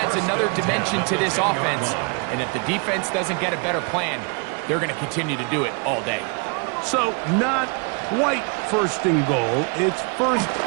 another dimension to this offense. And if the defense doesn't get a better plan, they're going to continue to do it all day. So, not quite first and goal. It's first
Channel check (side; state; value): left; quieter; 35.1 dB